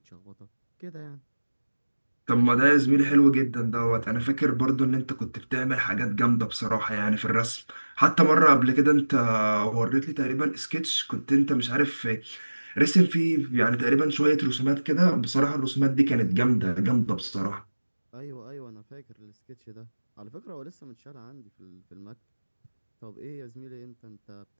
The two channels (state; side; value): inverted; both; correlation -1.00